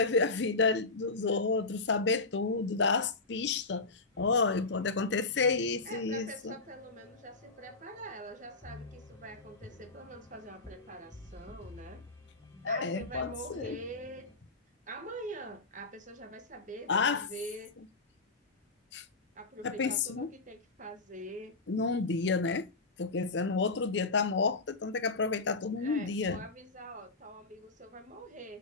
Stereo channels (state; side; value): quieter; right; 3.6 dB